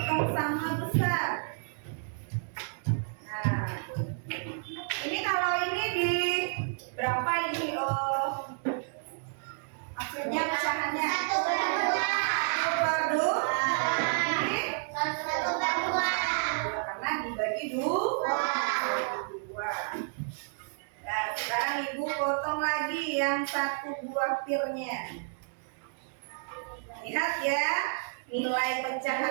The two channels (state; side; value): silent; left; digital silence